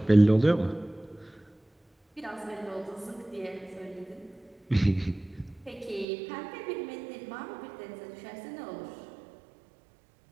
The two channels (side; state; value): left; drops out; at 6.1 s